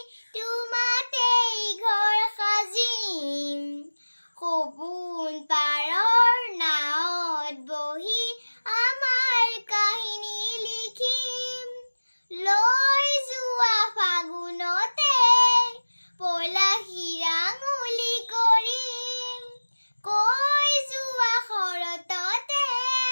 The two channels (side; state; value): both; inverted; correlation -1.00